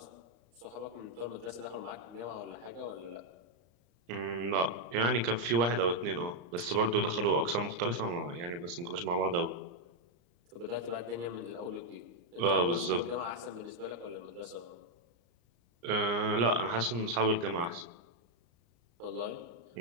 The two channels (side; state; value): left; late; 34 ms